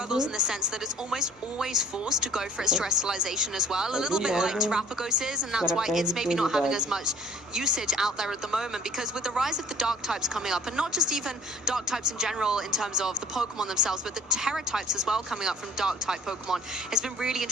in the sense that it's almost always forced to go for its Terrestrialization as well, a little bit like Terrapagos is, and that's why it's maybe not having as much usage out there at the moment, because with the rise of the dark types coming up, and not just even dark types in general in terms of the Pokemon themselves, but the Terra types as well coming up from dark type Pokemon, it's been really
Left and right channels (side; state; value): both; normal; correlation 0.52